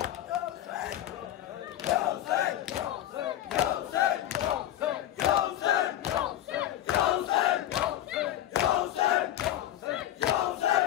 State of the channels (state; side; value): quieter; right; 12.7 dB